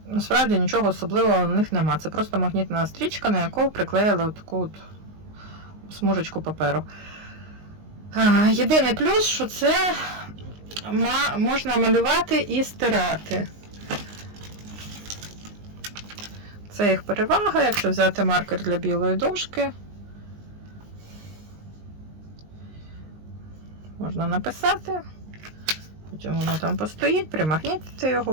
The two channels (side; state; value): left; late; 19 ms